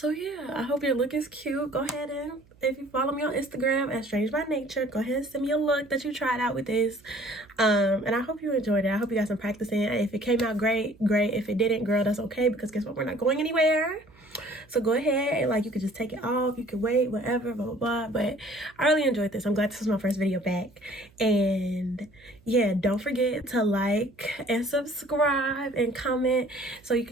yeah, I hope your look is cute. Go ahead and, if you follow me on Instagram at Strange by Nature, go ahead and send me a look that you tried out with this. And I hope you enjoyed it. I hope you got some practicing. If it came out great, great. If it didn't, girl, that's okay, because guess what? We're not going anywhere. So go ahead and like, you could just take it off. You could wait, whatever, blah, blah, blah. But I really enjoyed this. I'm glad this was my first video back. And yeah, don't forget to like and subscribe and comment so you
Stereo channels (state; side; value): noise; right; hum, 29 dB below the sound